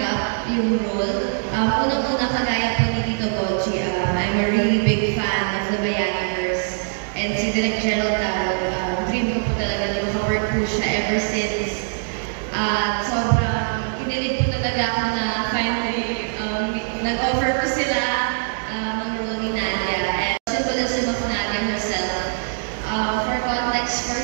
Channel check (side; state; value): left; silent; digital silence